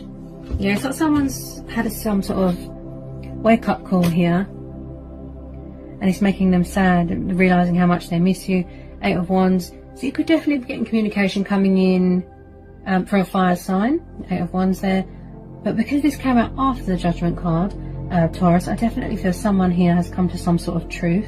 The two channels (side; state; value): both; identical; correlation 1.00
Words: Yeah, it's like someone's had some sort of wake-up call here. And it's making them sad, realising how much they miss you. 8 of Wands. So you could definitely be getting communication coming in for a fire sign. 8 of Wands there. But because this came out after the Judgment card, Taurus, I definitely feel someone here has come to some sort of